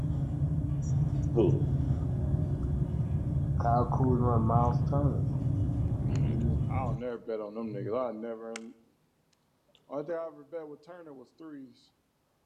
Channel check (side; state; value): both; identical; correlation 1.00